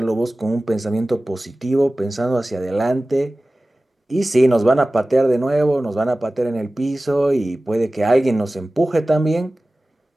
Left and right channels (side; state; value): both; normal; correlation 0.97